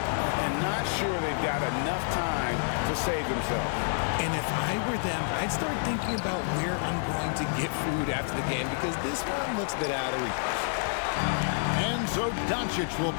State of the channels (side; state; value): right; silent; digital silence